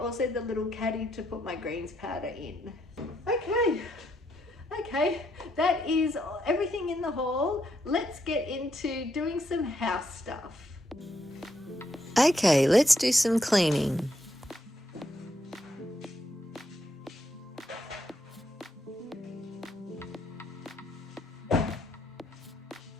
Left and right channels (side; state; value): both; normal; correlation 0.77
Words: the little caddy to put my greens powder in. Okay, that is everything in the haul. Let's get into doing some house stuff. Okay, let's do some cleaning.